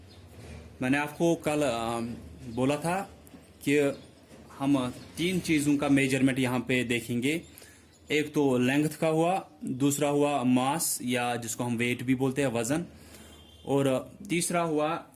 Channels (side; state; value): both; identical; correlation 1.00